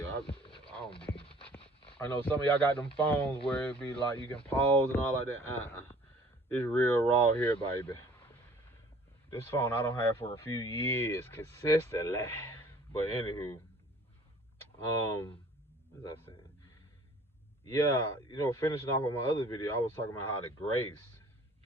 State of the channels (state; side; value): normal; both; correlation 0.52